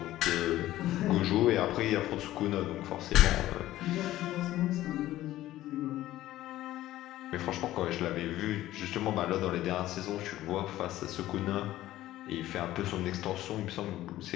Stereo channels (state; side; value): quieter; right; 14.8 dB